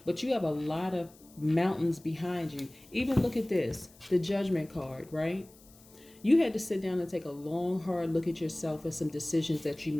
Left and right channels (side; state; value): left; noise; hiss, 26 dB below the sound